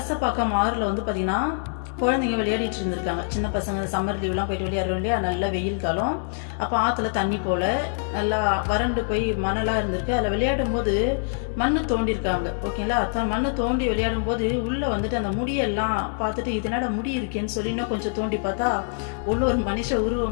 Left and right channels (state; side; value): silent; right; digital silence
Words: ஆறுல வந்து பாத்தீங்கன்னா குழந்தைங்க விளையாடிட்டு இருந்திருக்காங்க. சின்ன பசங்க சம்மர் லீவ்லாம் போயிட்டு விளையாடுறோம் இல்லையா, நல்ல வெயில் காலம். அப்போ ஆற்றுல தண்ணி போல நல்லா வறண்டு போய் மணலாக இருந்திருக்கு. அதில் விளையாடும் போது மண்ணு தோண்டிருக்காங்க, ஓகேங்களா. மண்ணு தோண்டி விளையாடும் போது உள்ளே வந்துட்டு அந்த முடியெல்லாம் பார்த்துட்டு இதனோட முடி இருக்கேன்னு சொல்லி இன்னும் கொஞ்சம் தோண்டி பார்த்தா உள்ள ஒரு மனுஷ